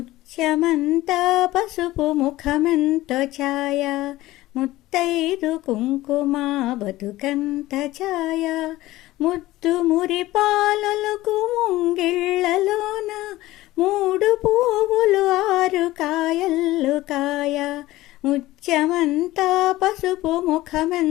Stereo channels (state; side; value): quieter; right; 17.1 dB